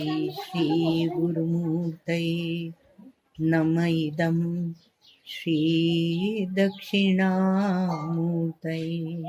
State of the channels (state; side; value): identical; both; correlation 1.00